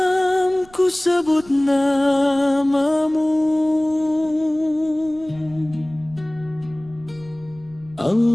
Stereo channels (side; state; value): right; noise; rumble, 24 dB below the sound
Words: ku sebut namamu,